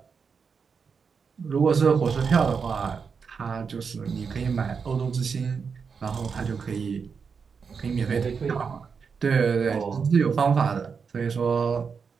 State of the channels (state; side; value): quieter; left; 5.8 dB